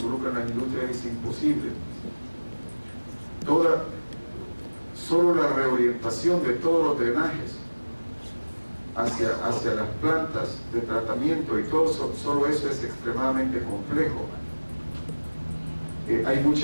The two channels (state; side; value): inverted; both; correlation -1.00